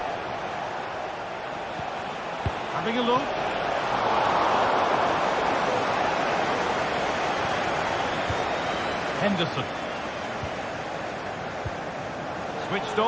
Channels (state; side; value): identical; both; correlation 1.00